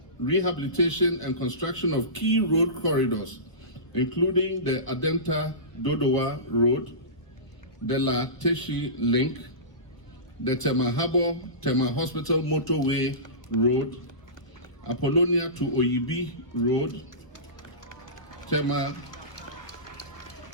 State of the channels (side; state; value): right; late; 1.0 ms